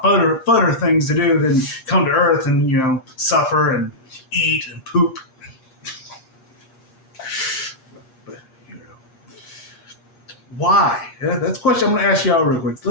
funner things to do than come to Earth and, suffer and eat and poop. But, why? Yeah, that's a question I'm going to ask y'all real quick.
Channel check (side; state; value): right; late; 8.5 ms